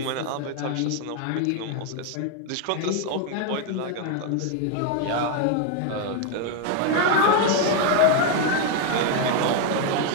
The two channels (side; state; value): both; different; correlation 0.01